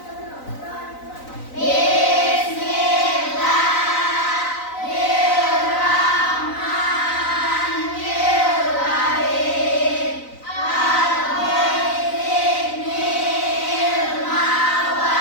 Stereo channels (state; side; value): late; right; 3.9 ms